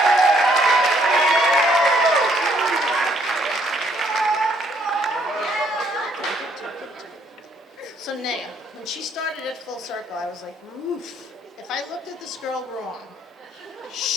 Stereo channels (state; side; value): normal; both; correlation 0.67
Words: So Naya, when she started at Full Circle, I was like, oof. If I looked at this girl wrong,